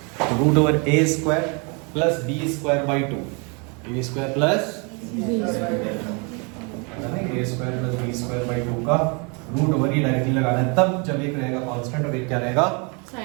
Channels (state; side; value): quieter; left; 32.9 dB